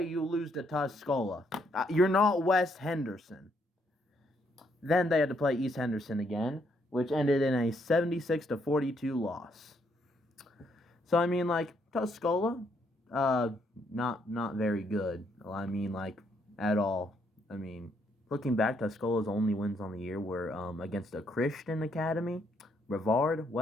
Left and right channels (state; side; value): normal; both; correlation 0.73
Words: you lose to Tuscola. You're not West Henderson. Then they had to play East Henderson again, which ended in a 76-42 loss. So, I mean, like, Tuscola, not very good. I mean, like, at all. I mean, looking back, Tuscola's only wins on the year were against a Christian academy, Brevard,